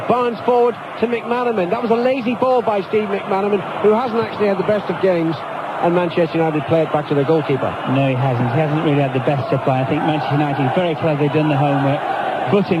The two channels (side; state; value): both; identical; correlation 1.00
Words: Barnes forward to McManaman. That was a lazy ball by Steve McManaman, who hasn't actually had the best of games, and Manchester United play it back to their goalkeeper. No, he hasn't. He hasn't really had the best supply. I think Manchester United very cleverly done the homework,